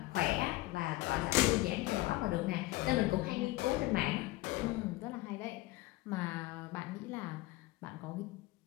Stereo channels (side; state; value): right; quieter; 19.1 dB